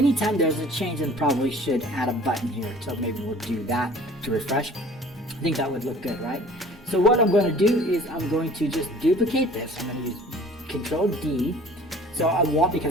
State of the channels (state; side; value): normal; both; correlation 0.48